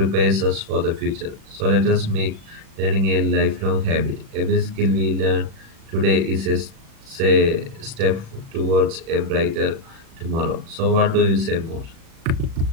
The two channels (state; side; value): late; left; 37 ms